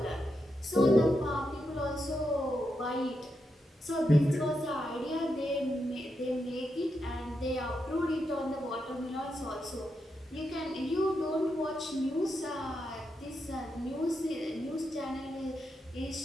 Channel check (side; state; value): both; normal; correlation 0.85